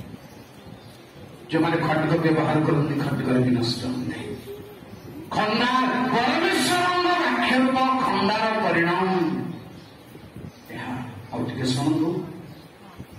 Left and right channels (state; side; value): identical; both; correlation 1.00